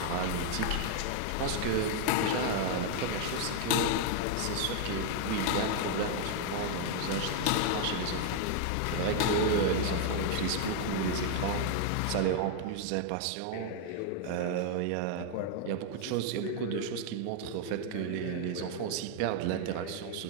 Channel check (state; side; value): different; both; correlation 0.00